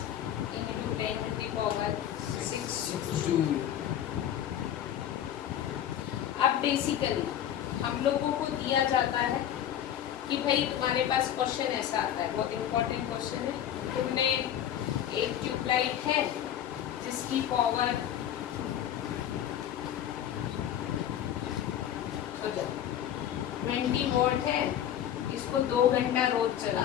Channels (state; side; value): quieter; right; 10.5 dB